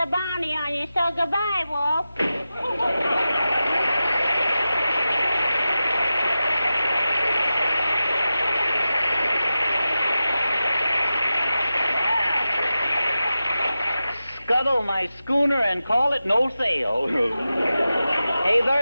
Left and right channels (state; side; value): inverted; both; correlation -0.93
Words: bounty on you. So goodbye, Wolf. Scuttle my schooner and call it no sail. Hey,